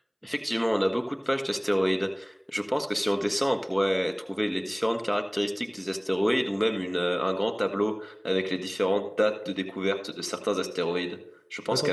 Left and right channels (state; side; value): identical; both; correlation 1.00